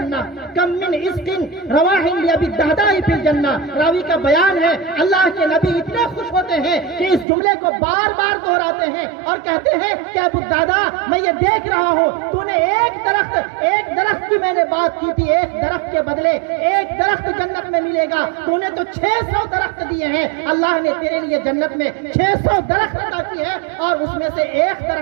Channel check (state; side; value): drops out; left; at 7.2 s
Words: کم من عزق رواح لأبی الدرداء فی الجنہ۔ راوی کا بیان ہے اللہ کے نبی اتنے خوش ہوتے ہیں کہ اس جملے کو بار بار دہراتے ہیں اور کہتے ہیں کہ ابو الدرداء میں یہ دیکھ رہا ہوں تو نے ایک درخت کی میں نے بات کی تھی، ایک درخت کے بدلے ایک درخت جنت میں ملے گا، تو نے تو 600 درخت دیے ہیں، اللہ نے تیرے لیے جنت میں 600 درخت عطا کی ہے اور اس میں سے ایک